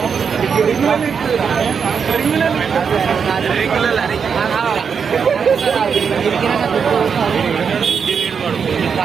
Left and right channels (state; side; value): quieter; left; 6.4 dB